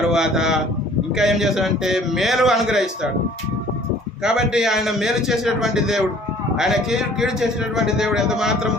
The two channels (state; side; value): normal; both; correlation 0.53